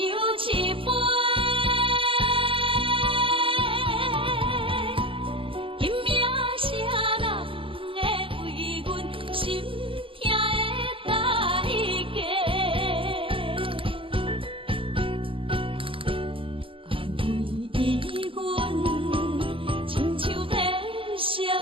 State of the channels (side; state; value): left; late; 0.25 ms